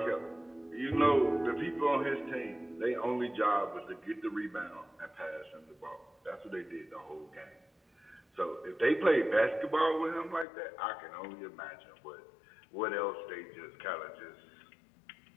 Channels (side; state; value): right; drops out; at 10.5 s